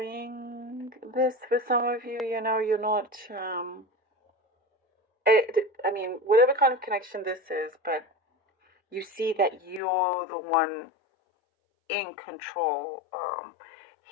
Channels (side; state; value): right; drops out; at 9.8 s